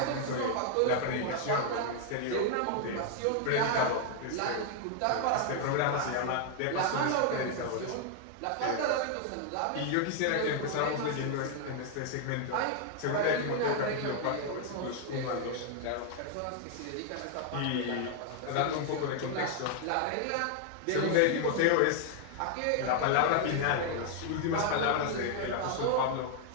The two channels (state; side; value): different; both; correlation 0.00